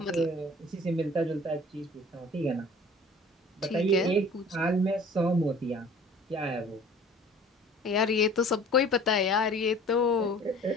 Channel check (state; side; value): normal; both; correlation 0.47